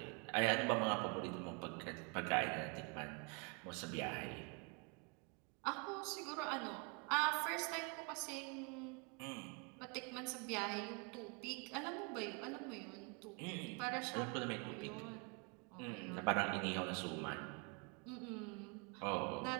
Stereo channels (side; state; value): left; quieter; 32.4 dB